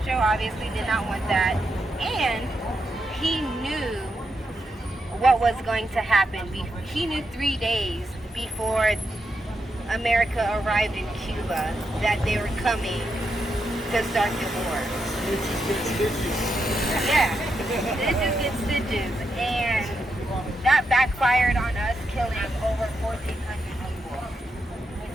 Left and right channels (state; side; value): normal; both; correlation 0.84